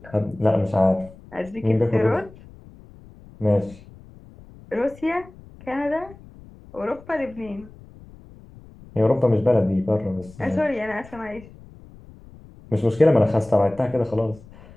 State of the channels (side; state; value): left; noise; rumble, 21 dB below the sound